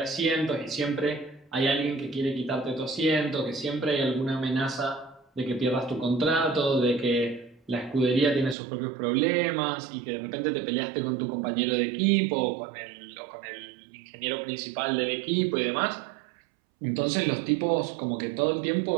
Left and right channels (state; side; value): drops out; left; at 8.6 s